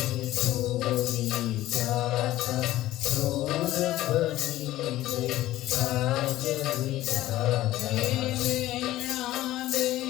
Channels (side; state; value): right; quieter; 15.3 dB